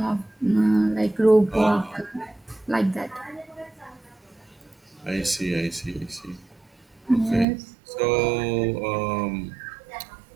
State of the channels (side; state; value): left; drops out; at 7.5 s